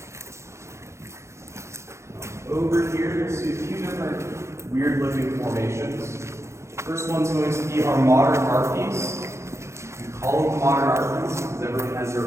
Over here, you'll see a few different weird-looking formations. First one's going to be our modern art piece. We call it the modern art piece because everyone has their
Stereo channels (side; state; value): left; late; 0.14 ms